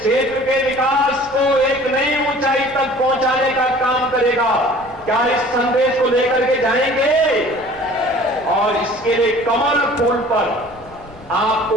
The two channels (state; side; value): noise; left; rumble, 23 dB below the sound